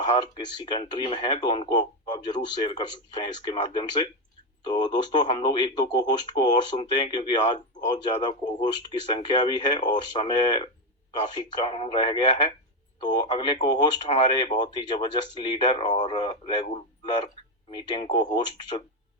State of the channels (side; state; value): both; normal; correlation 0.10